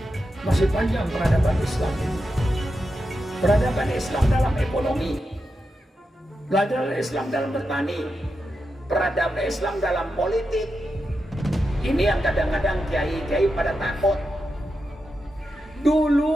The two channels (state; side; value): normal; both; correlation 0.88